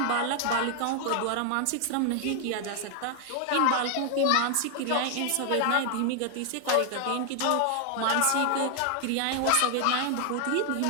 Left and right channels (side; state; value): both; different; correlation 0.00